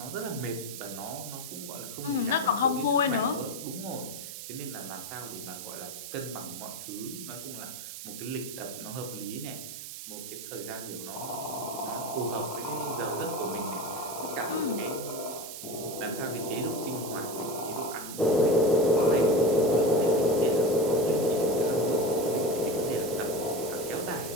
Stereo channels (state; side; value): noise; right; hiss, 10 dB below the sound